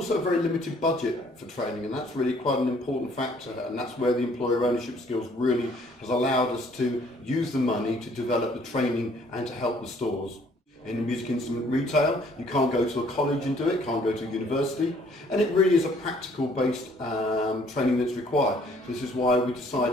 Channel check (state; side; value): normal; both; correlation 0.61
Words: a very limited budget for training, and that's really quite an important factor, and that's where the employer ownership skills really has allowed us to use the money to develop the training and to help the stores. In the music instrument retail, you can't go to a college and do it, can't go to a university, and it really is a practical based training that's required. This is why we